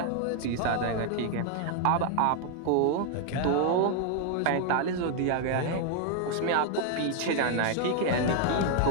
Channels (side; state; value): both; different; correlation 0.00